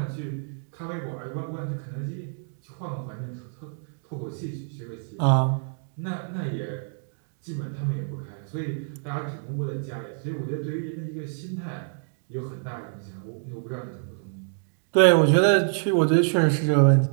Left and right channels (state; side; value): silent; left; digital silence